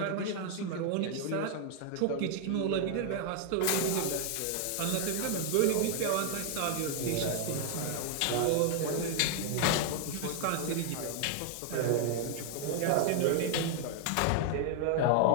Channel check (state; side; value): different; both; correlation 0.00